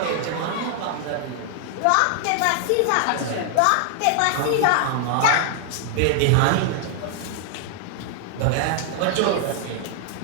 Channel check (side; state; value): both; different; correlation 0.00